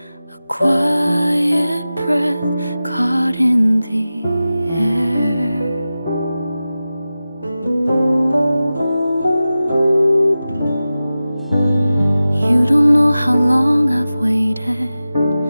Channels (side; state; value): both; inverted; correlation -0.95